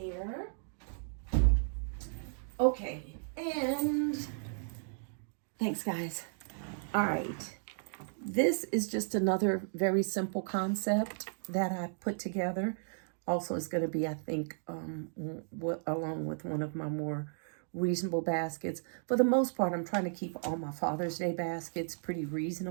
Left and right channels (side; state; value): left; silent; digital silence